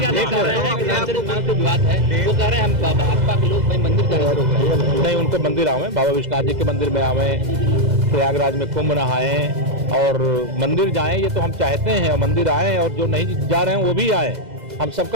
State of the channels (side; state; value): left; late; 2.0 ms